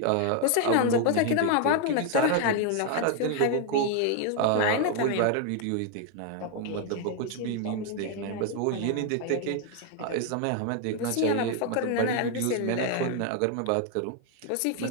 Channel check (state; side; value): different; both; correlation 0.01